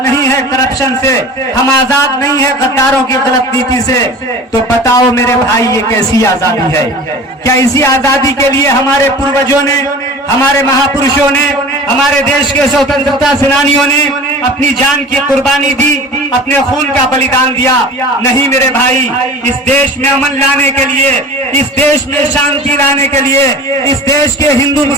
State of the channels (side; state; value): both; normal; correlation 0.39